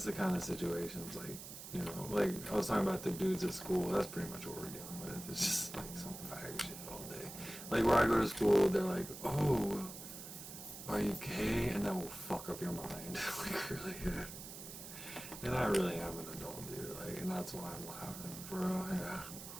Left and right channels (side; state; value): right; noise; hiss, 11 dB below the sound